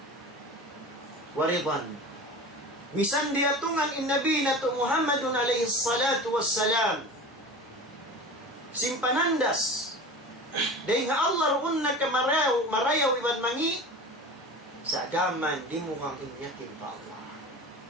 Waridan. Misan dia tungan in Nabi nato Muhammadun alaihi salatu wassalam simpanandas day nga Allah runna ka marayaw iban mangi sa gaman di mo kang inyakin pa Allah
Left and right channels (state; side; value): normal; both; correlation 0.34